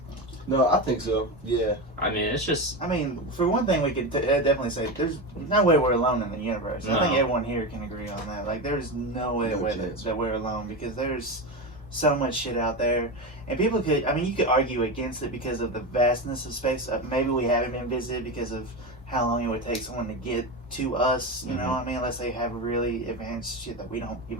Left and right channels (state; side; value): normal; both; correlation 0.19